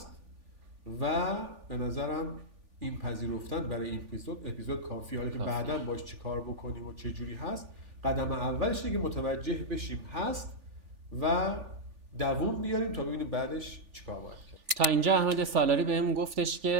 و به نظرم این پذیرفتن برای این اپیزود کافیه. حالا که بعداً باش چی کار بکنیم و چه جوری هست، قدم اولش اینه که متوجه بشیم هست و دووم بیاریم تا ببینیم بعدش چیکار باید کرد. تا اینجا احمد سالاری بهم گفتش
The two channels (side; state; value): left; late; 3.4 ms